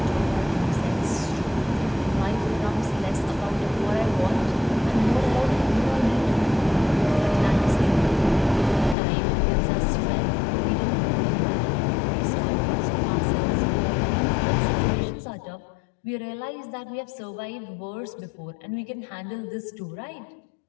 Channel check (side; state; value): right; drops out; at 9.0 s